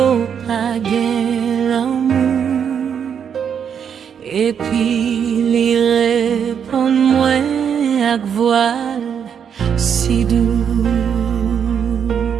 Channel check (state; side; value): quieter; left; 7.7 dB